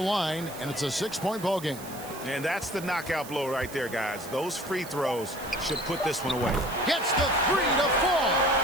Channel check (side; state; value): right; noise; hiss, 15 dB below the sound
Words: and it's a 6-point ball game. And that's the knockout blow right there, guys. Those free throws should put this one away. Gets the 3 to fall.